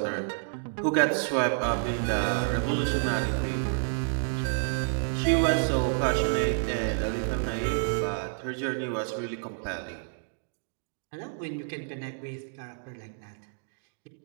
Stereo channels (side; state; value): left; silent; digital silence